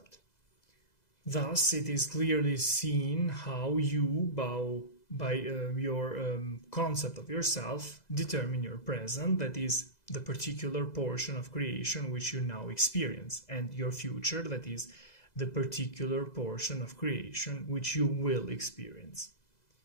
Thus, it is clearly seen how you, by your concept of yourself, determine your present, that is, the particular portion of creation which you now experience, and your future, that is, the particular portion of creation which you will experience.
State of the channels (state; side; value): late; right; 2.0 ms